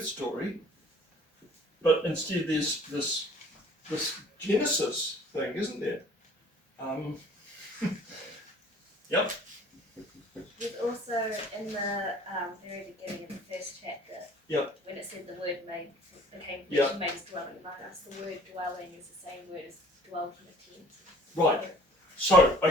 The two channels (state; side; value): normal; both; correlation 0.53